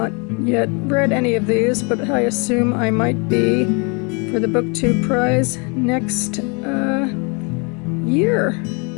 yet read any of these, but I assume I might be for the BookTube prize next year.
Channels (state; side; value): quieter; right; 32.5 dB